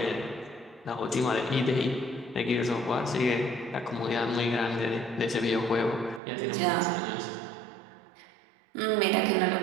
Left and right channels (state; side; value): drops out; left; at 6.2 s